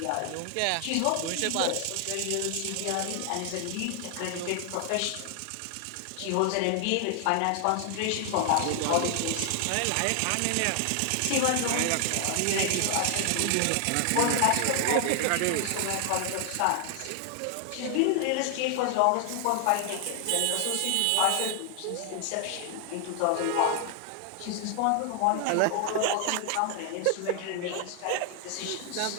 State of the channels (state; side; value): different; both; correlation 0.00